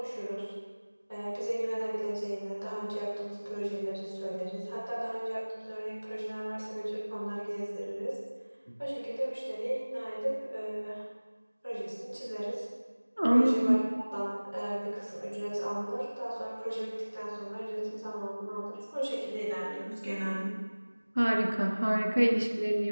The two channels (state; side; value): inverted; both; correlation -1.00